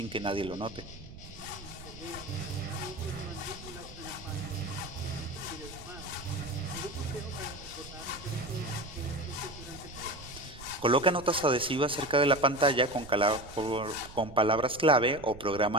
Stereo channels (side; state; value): right; noise; rumble, 16 dB below the sound